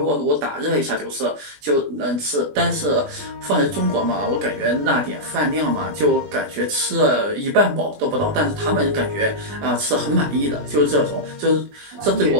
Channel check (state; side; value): late; left; 20 ms